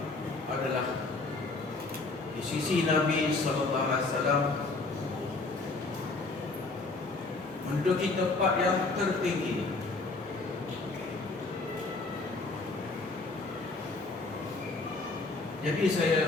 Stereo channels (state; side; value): quieter; right; 3.5 dB